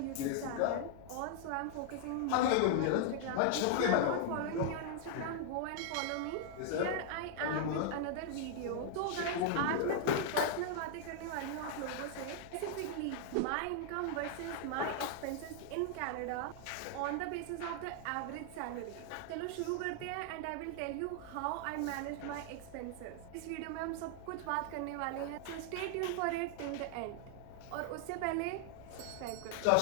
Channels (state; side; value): different; both; correlation 0.00